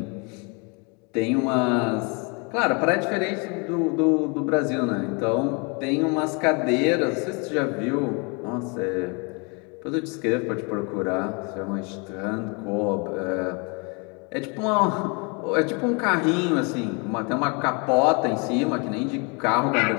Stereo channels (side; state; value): right; quieter; 32.4 dB